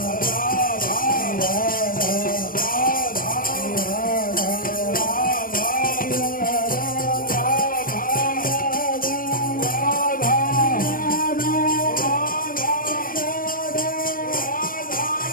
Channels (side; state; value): right; late; 0.41 ms